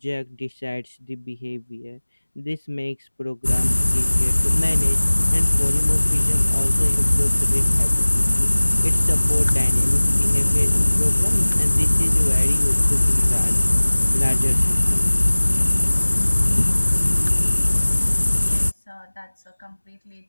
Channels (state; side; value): inverted; both; correlation -1.00